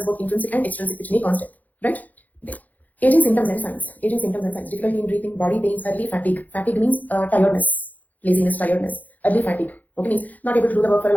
both intrinsic and extrinsic, which may cause death. Right? Aging symptoms and signs. Aging symptoms and signs. Difficulty in breathing, body pains, early fatigue. Fatigue means tiredness, laziness, tiredness. Early fatigue. Okay, means not able to do the work for a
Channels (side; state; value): right; late; 0.080 ms